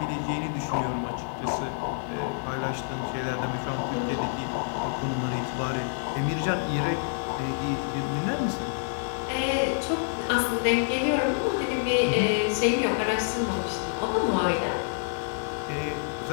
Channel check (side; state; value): right; silent; digital silence